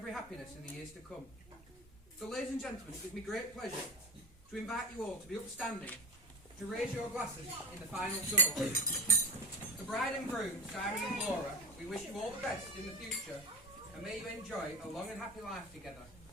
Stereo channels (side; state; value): both; normal; correlation 0.27